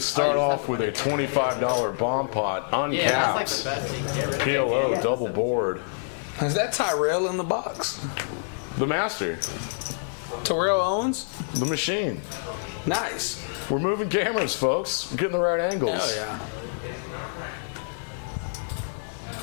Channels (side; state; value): right; silent; digital silence